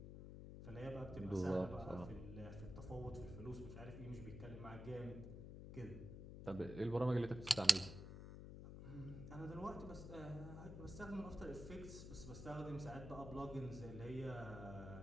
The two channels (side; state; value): left; noise; hum, 9 dB below the sound